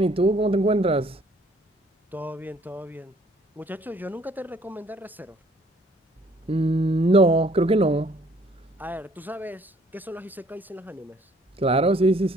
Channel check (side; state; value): both; normal; correlation 0.60